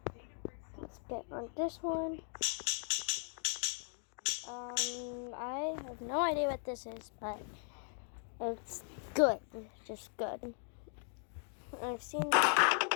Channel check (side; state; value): right; silent; 52 dB below the other